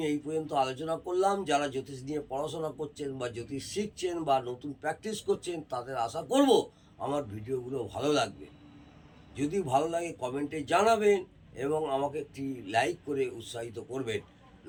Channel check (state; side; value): identical; both; correlation 1.00